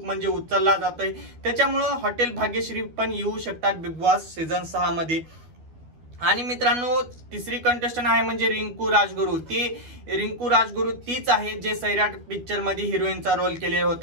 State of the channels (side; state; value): left; late; 12 ms